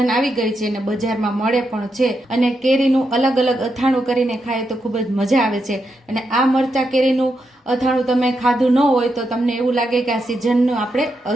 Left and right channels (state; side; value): normal; both; correlation 0.84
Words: આવી ગઈ છે અને બજારમાં મળે પણ છે, અને કેરીનું અલગ અલગ અથાણું કરીને ખાય તો ખૂબ જ મજા આવે છે। અને આ મરચાં કેરીનું અથાણું તમે ખાધું ન હોય તો તમને એવું લાગે કે આ સિઝનનું આપણે